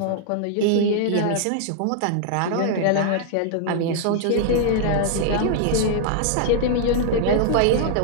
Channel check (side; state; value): both; different; correlation -0.01